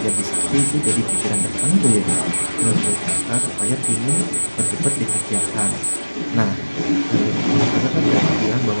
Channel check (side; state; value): both; inverted; correlation -1.00